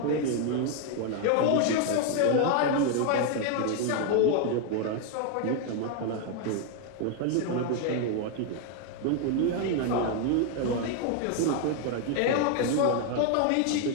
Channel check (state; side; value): different; both; correlation 0.00